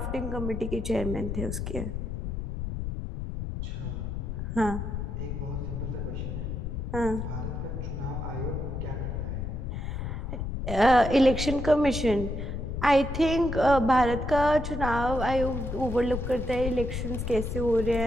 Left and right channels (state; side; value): noise; left; rumble, 4 dB below the sound